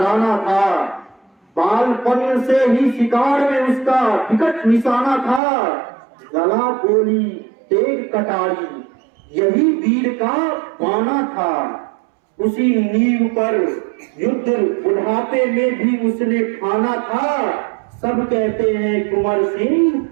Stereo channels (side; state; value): left; drops out; at 5.4 s